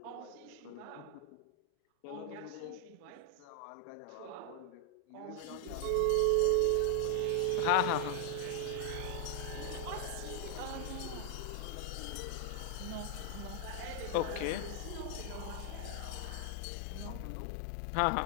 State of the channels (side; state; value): both; different; correlation 0.00